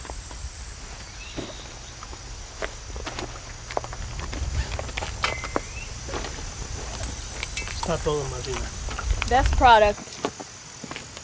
Está todo, Marina. Best product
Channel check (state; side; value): identical; both; correlation 1.00